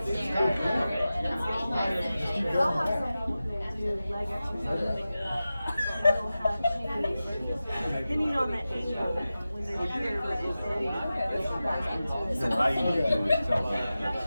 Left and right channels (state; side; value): inverted; both; correlation -0.94